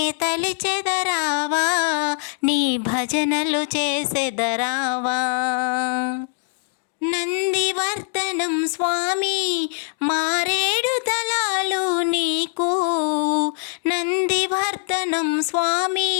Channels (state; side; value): silent; right; digital silence